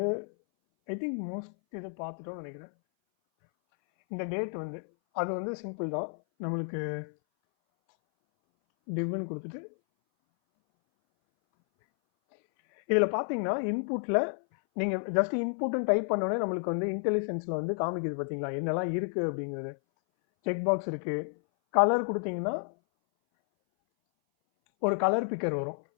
ஐ திங்க் மோஸ்ட் இதை பார்த்துட்டோம்னு நினைக்கிறேன். இந்த டேட் வந்து அது வந்து சிம்பிள் தான். நம்மளுக்கு டிவ்னு கொடுத்துட்டு இதில் பார்த்தீங்கன்னா இன்புட்டில் நீங்கள் ஜஸ்ட் இன்புட்னு டைப் பண்ணோடனே நம்மளுக்கு வந்து இன்டெலிஜென்ஸில் வந்து காமிக்குது பார்த்தீங்களா என்னெல்லாம் இருக்குது அப்படிங்கிறது. செக் பாக்ஸ் இருக்குது. கலர் கொடுத்தீங்கன்னா ஒரு கலர் பிக்கர் வரும்,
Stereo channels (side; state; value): right; silent; 57 dB below the other